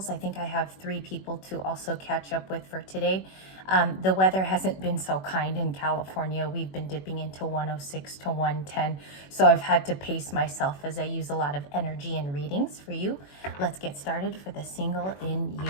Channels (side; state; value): right; late; 21 ms